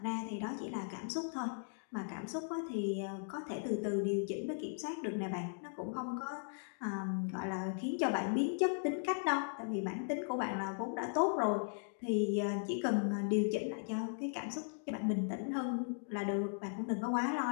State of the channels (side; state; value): right; silent; digital silence